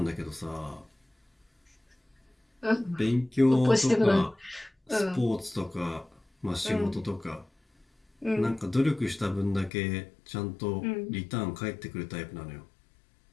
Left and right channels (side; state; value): right; drops out; at 9.7 s